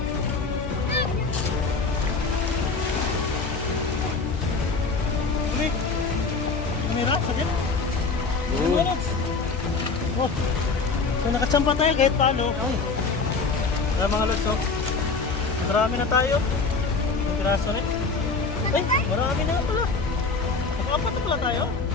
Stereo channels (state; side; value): quieter; right; 4.3 dB